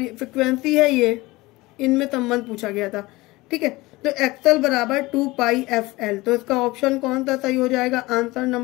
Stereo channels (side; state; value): right; quieter; 20.9 dB